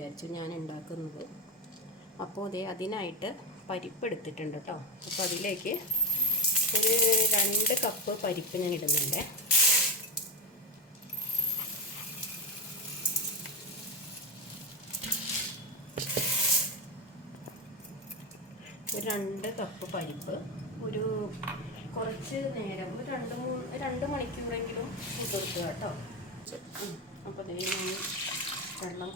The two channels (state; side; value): normal; both; correlation 0.13